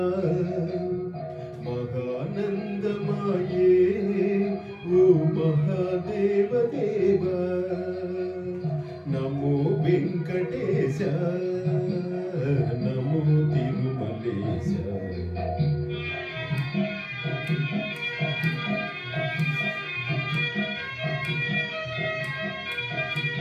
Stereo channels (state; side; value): identical; both; correlation 1.00